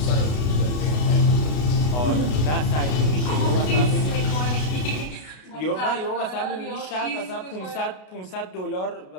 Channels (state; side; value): late; right; 33 ms